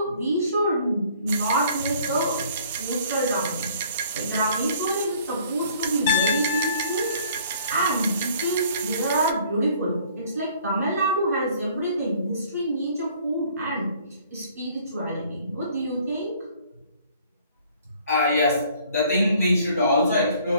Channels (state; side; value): inverted; both; correlation -0.57